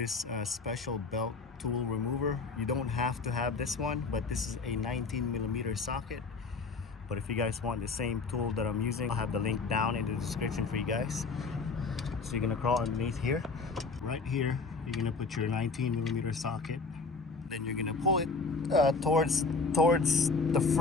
special belt tool remover. You don't have to have this one, but this is a 19 millimeter socket. But if you guys want the same tool that I'm using, I'll have the link down in the description for you guys. So you're gonna crawl underneath here. Right here, you're gonna put your 19 millimeter socket. Then you're gonna pull it towards the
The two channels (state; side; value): quieter; right; 4.2 dB